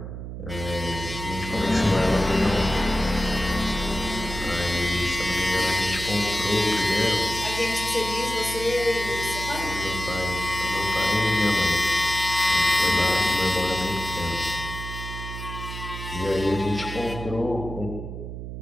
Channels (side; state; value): right; noise; hum, 8 dB below the sound